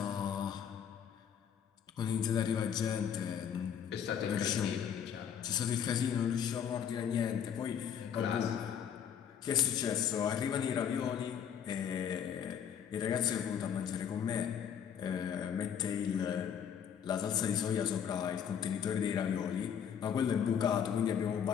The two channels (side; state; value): right; quieter; 8.3 dB